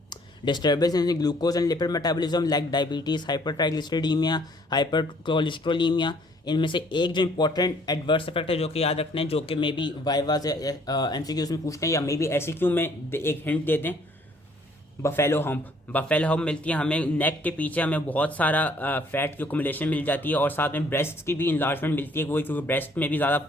disturbance in glucose and lipid metabolism like diabetes, hyper triglyceridaemia, hyper cholesterolaemia. इनमें से एक जो इंपॉर्टेंट एडवर्स इफेक्ट है जो कि याद रखना है, जो कि मे बी वाइवा से MCQs में पूछते हैं या मे बी SEQ में एक हिंट दे दें, बफेलो हम्प मिलती है हमें नेक के पीछे, हमें बहुत सारा फैट की अकोमोलेशन मिल जाती है और साथ में ब्रेस्ट की भी इंलार्जमेंट मिलती है, वही क्योंकि ब्रेस्ट में भी ज़्यादा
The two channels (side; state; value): both; normal; correlation 0.61